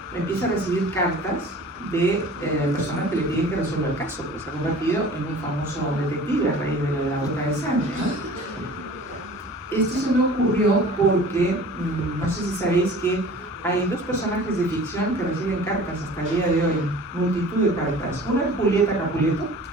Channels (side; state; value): both; normal; correlation 0.44